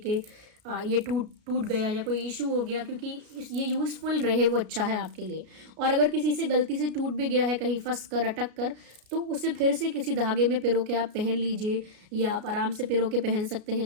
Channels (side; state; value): left; late; 33 ms